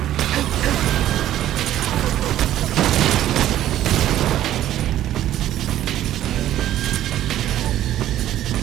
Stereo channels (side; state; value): left; quieter; 12.7 dB